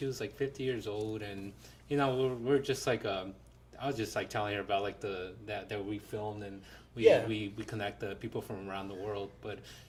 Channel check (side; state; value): both; identical; correlation 1.00